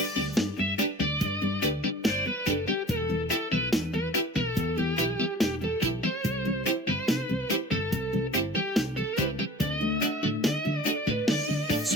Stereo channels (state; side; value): normal; both; correlation 0.45